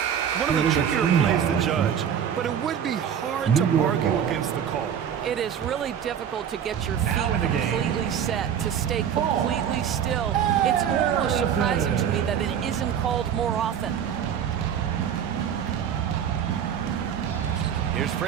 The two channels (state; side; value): quieter; left; 8.6 dB